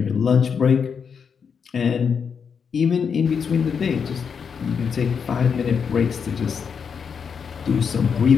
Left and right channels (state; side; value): quieter; right; 6.5 dB